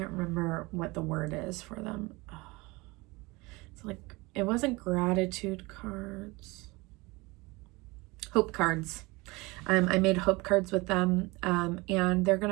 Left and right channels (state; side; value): quieter; left; 23.8 dB